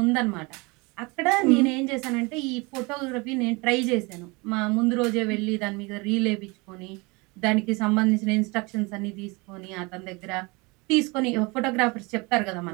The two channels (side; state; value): left; quieter; 26.7 dB